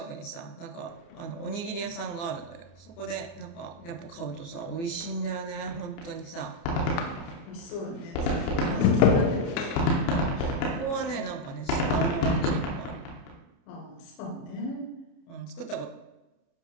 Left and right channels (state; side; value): late; right; 29 ms